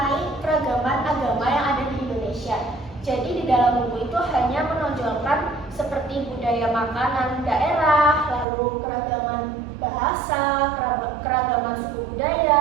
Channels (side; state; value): left; drops out; at 8.5 s